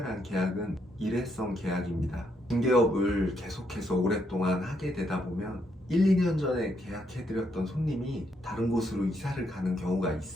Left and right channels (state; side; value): normal; both; correlation 0.76